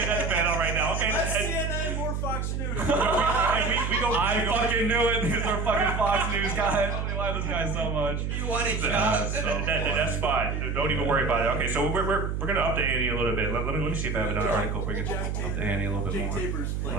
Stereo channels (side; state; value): right; noise; hum, 2 dB below the sound